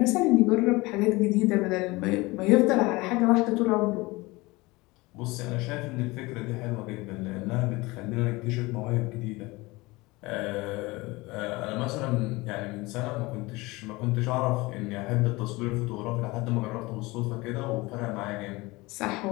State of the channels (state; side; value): quieter; right; 22.4 dB